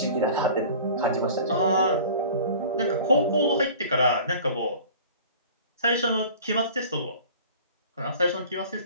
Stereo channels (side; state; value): both; inverted; correlation -0.44